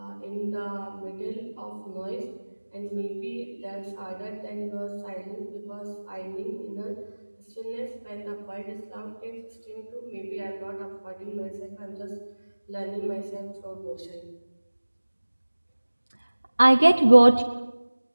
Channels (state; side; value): inverted; both; correlation -1.00